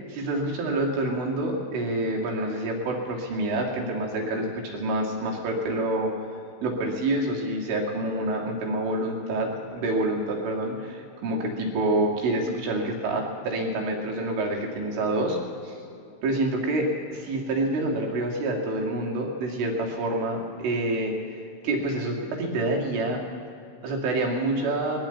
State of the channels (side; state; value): left; late; 16 ms